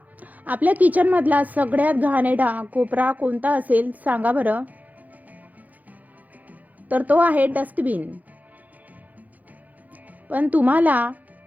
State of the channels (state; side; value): late; left; 0.080 ms